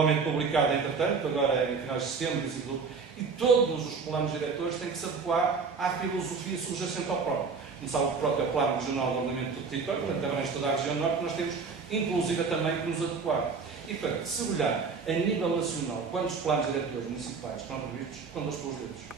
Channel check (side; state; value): left; quieter; 5.0 dB